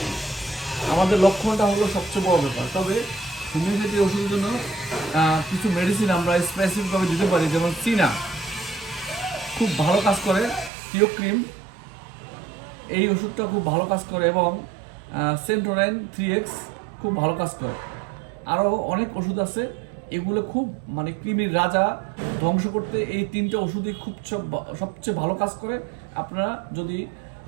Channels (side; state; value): left; drops out; at 10.7 s